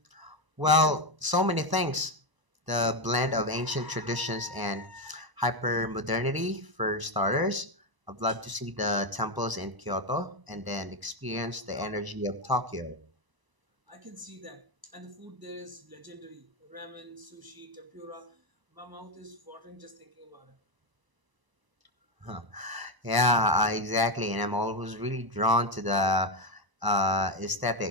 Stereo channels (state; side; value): late; left; 1.0 ms